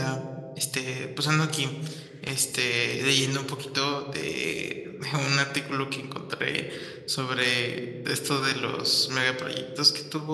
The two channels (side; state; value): both; identical; correlation 1.00